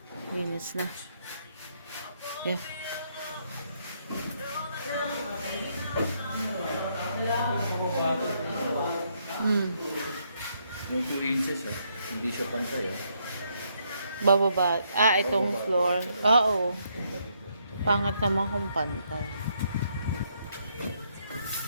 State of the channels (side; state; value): both; inverted; correlation -0.74